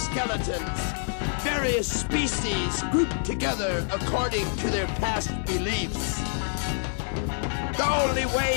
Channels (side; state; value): right; silent; digital silence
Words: Various species grouped together according to their past beliefs. The only